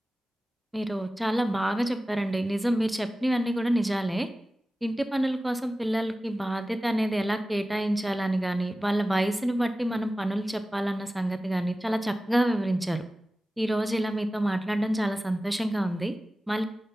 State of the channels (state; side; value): normal; both; correlation 0.96